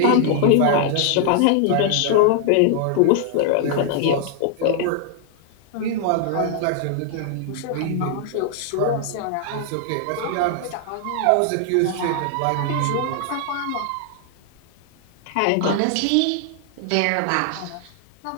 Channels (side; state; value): both; different; correlation 0.00